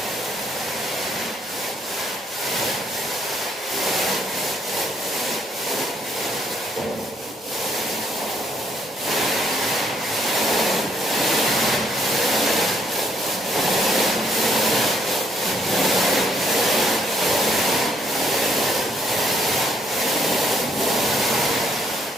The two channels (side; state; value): both; normal; correlation 0.69